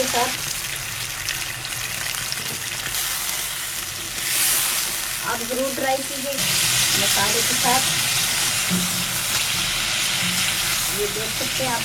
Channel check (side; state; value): both; identical; correlation 1.00